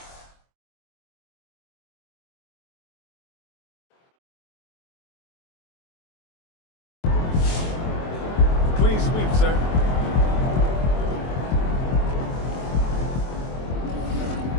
Clean sweep, sir.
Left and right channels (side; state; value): right; late; 23 ms